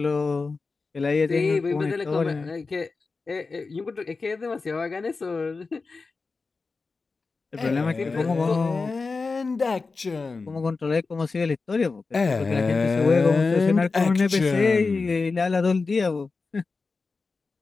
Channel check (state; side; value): quieter; right; 4.2 dB